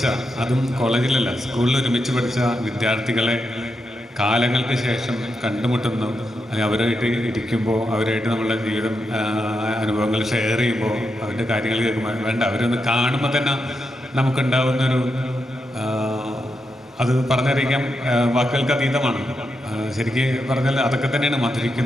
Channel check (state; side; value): normal; both; correlation 0.85